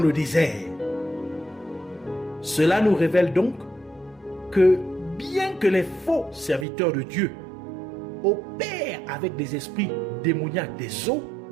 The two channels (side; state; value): left; drops out; at 6.7 s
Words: désert. Cela nous révèle donc que bien que les faux serviteurs de Dieu opèrent avec des esprits démoniaques des eaux,